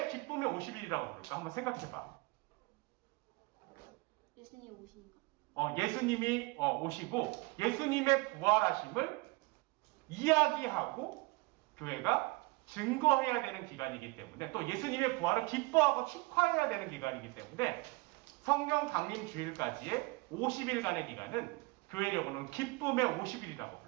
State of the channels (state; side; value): quieter; left; 24.8 dB